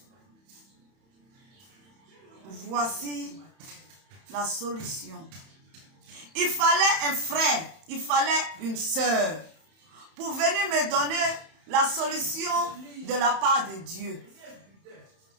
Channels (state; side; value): late; left; 31 ms